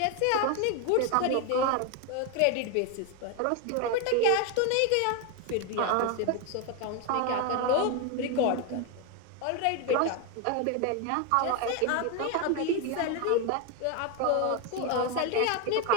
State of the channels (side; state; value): both; different; correlation 0.02